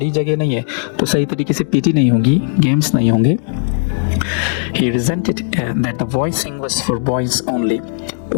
जगह नहीं है तो सही तरीके से PT नहीं होगी, गेम्स नहीं होंगे। He resented that the voicing was for boys only.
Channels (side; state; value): right; silent; digital silence